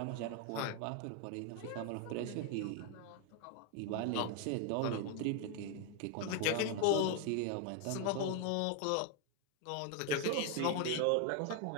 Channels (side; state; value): both; different; correlation 0.01